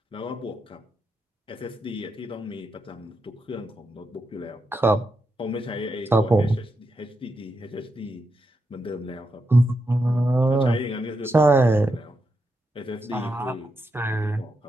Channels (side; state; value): both; normal; correlation 0.84